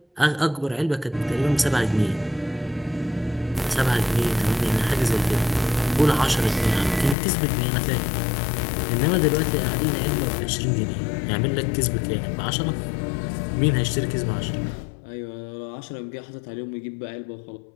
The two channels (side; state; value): right; drops out; at 7.2 s